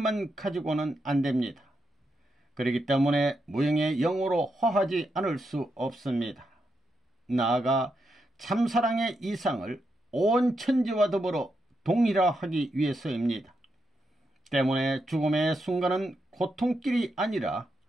가지고는 안 됩니다. 그렇기 때문에 무형의 영으로 화하지 않을 수 없습니다. 나아가 참사랑의 이상을 온 천지와 더불어 동일화하기 위해서입니다. 때문에 죽음의 순간은 고통길이 아니라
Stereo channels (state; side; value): normal; both; correlation 0.84